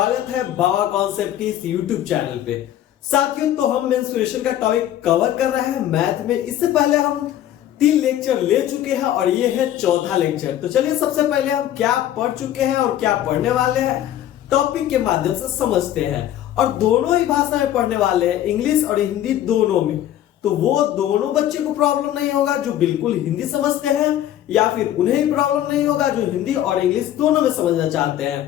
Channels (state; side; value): quieter; right; 12.0 dB